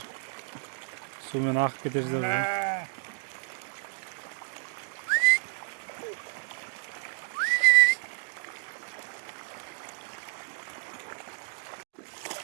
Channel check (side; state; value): left; silent; digital silence